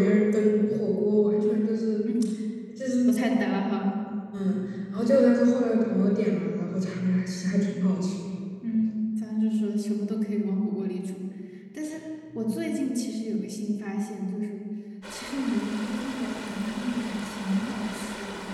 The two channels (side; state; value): both; identical; correlation 1.00